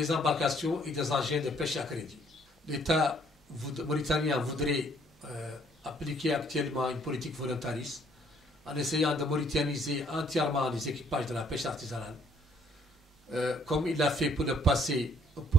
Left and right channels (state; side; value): normal; both; correlation 0.64